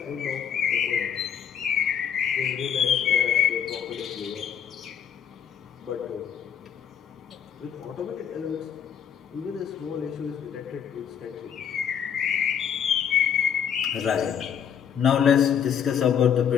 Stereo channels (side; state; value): right; quieter; 8.3 dB